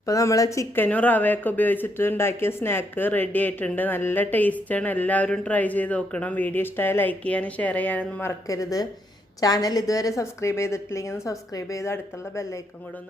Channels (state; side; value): normal; both; correlation 0.76